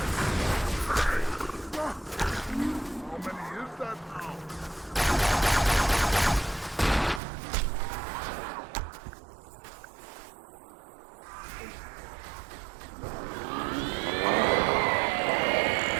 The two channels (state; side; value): drops out; left; at 7.2 s